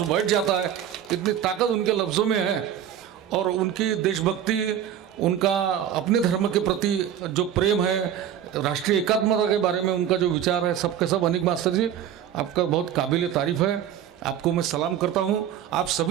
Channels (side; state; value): left; quieter; 9.9 dB